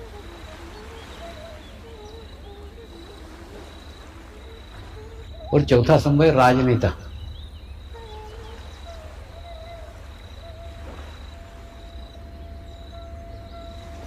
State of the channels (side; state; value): both; identical; correlation 1.00